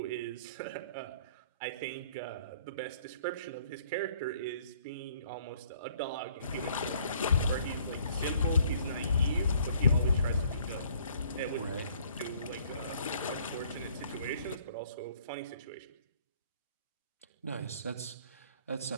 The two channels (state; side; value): inverted; both; correlation -0.60